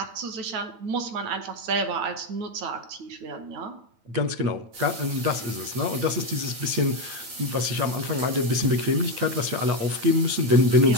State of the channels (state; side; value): late; left; 9.0 ms